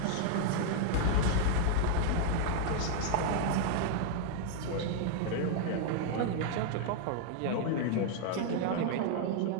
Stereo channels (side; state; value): both; different; correlation 0.00